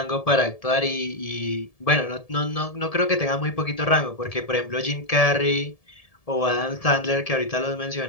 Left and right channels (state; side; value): late; right; 1.7 ms